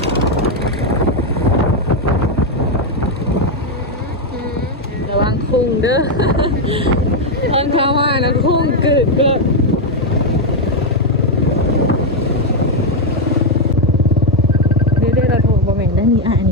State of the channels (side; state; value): both; normal; correlation 0.03